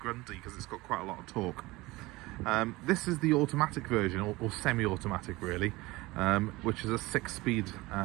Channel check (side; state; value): left; quieter; 21.0 dB